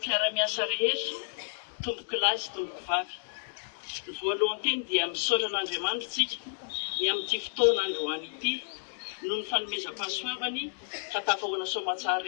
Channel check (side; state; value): right; silent; digital silence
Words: rehetra, tomboky lahy sy tomboky vavy. Voalohany teny dia misaotra an'Andriamanitra isika ny amin'ity fotoana androany ity, noho ny fanomezam-pahasoavany ka tafahoana soamantsara